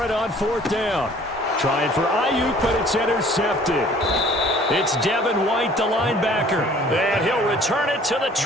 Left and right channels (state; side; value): normal; both; correlation 0.53